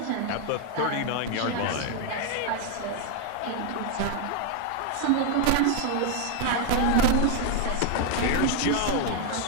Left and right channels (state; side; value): different; both; correlation 0.01